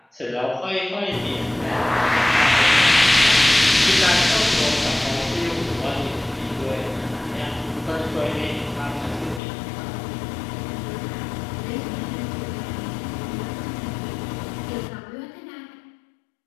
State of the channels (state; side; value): drops out; right; at 9.4 s